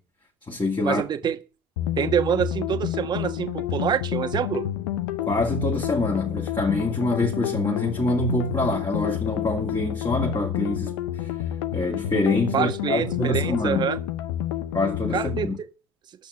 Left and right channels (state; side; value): normal; both; correlation 0.44